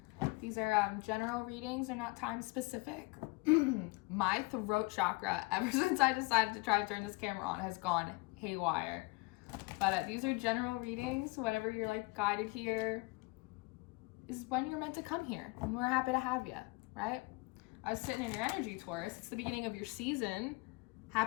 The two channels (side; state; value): right; quieter; 25.4 dB